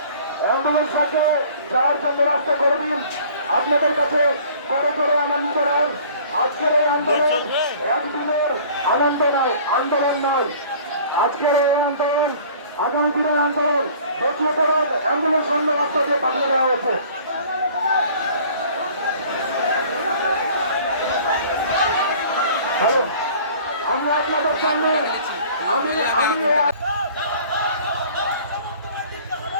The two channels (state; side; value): inverted; both; correlation -0.49